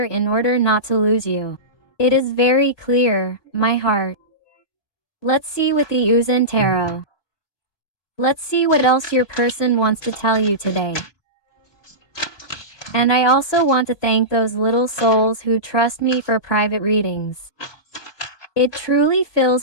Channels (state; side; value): late; right; 3.1 ms